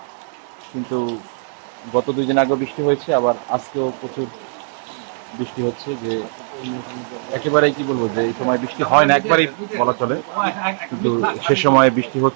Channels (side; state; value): left; silent; 66 dB below the other